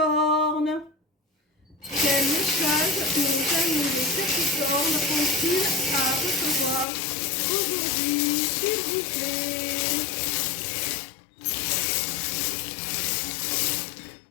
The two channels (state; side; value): drops out; right; at 6.9 s